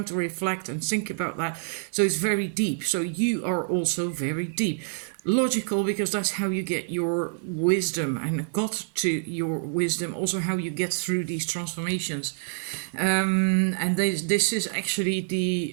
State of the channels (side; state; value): left; silent; digital silence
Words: to reflect and think about that. So it's very deep. So you are also very deep. Logical, because that's how you get your wisdom and got to your wisdom, also how you get through these transformations. And this is actually